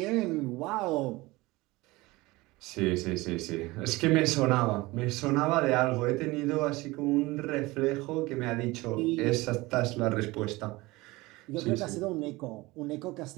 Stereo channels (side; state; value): left; quieter; 21.2 dB